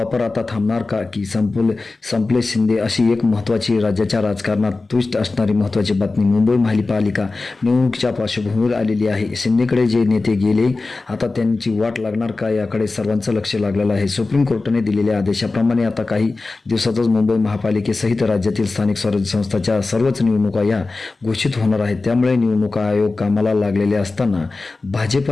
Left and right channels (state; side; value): quieter; right; 3.6 dB